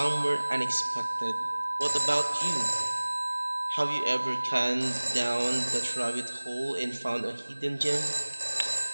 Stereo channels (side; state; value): both; inverted; correlation -1.00